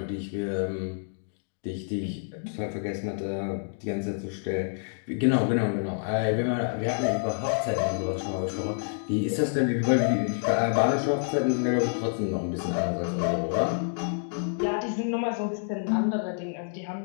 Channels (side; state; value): right; silent; digital silence